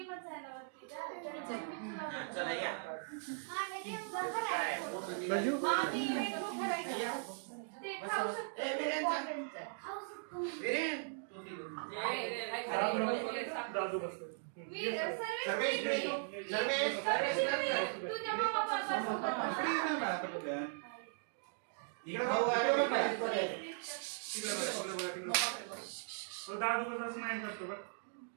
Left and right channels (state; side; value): silent; left; digital silence